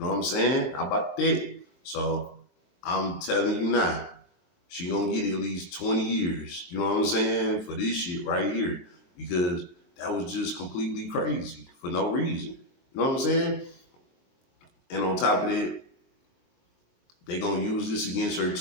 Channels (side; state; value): right; late; 23 ms